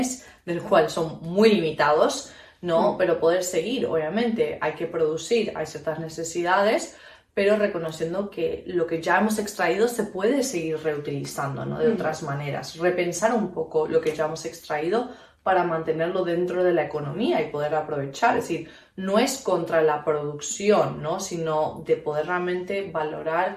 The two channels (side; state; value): both; identical; correlation 1.00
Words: del cual son muy limitados, ¿no? Pero poder seguir, obviamente, hay que producir, hay ciertas necesidades, pero reconociendo que lo que ya hemos extraído se puede seguir reutilizando, ¿no? De otras maneras, repensar un poco lo que ya hemos extraído para mantenerlo dentro de la economía y poder aprovechar, es decir, no es contra la producción, ¿no? Sino de poder realmente valorar